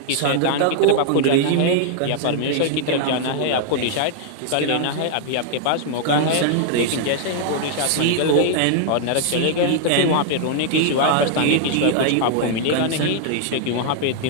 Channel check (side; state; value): both; different; correlation -0.01